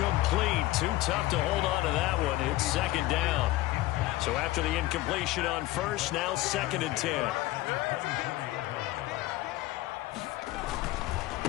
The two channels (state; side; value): quieter; right; 17.3 dB